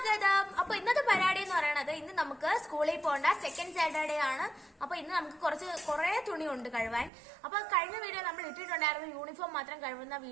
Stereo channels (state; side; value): drops out; left; at 7.1 s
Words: അപ്പൊ ഇന്നത്തെ പരിപാടി എന്ന് പറയുന്നത്, ഇന്ന് നമുക്ക് സ്കൂളിൽ പോകേണ്ട സെക്കൻഡ് സാറ്റർഡേ ആണ്. അപ്പൊ ഇന്ന് നമുക്ക് കുറെ തുണി ഉണ്ട് കഴുവാൻ. അപ്പൊ കഴിഞ്ഞ വീഡിയോ നമ്മൾ ഇട്ടിട്ടുണ്ടായിരുന്നു യൂണിഫോം മാത്രം കഴുകുന്ന